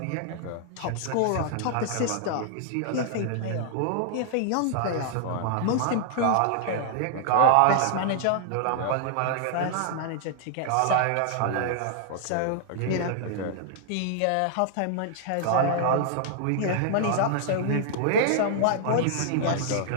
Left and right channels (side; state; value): both; different; correlation -0.01